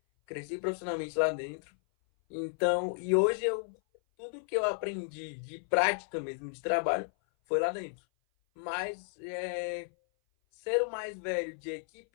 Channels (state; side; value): silent; right; 56 dB below the other